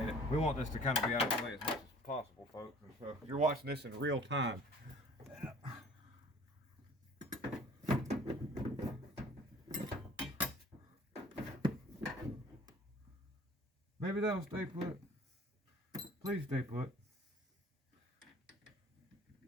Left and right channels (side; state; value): both; normal; correlation 0.50